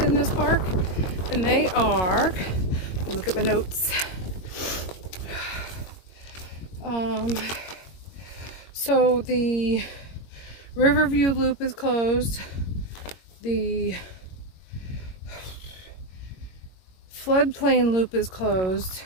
this park, and they are, let me look at my notes. So the Riverview Loop is closed. The Floodplain Loop is closed,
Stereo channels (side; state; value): right; late; 22 ms